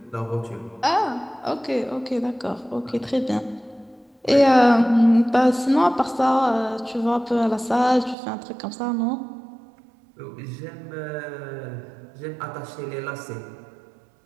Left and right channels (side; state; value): left; drops out; at 8.2 s